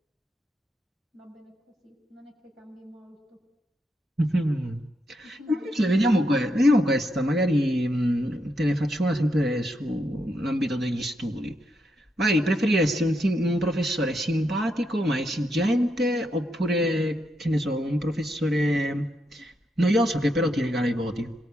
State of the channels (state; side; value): normal; both; correlation 0.81